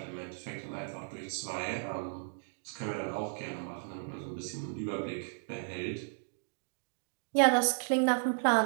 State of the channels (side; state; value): left; silent; digital silence